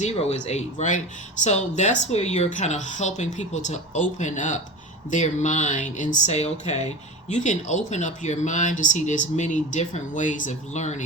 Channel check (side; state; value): both; normal; correlation 0.31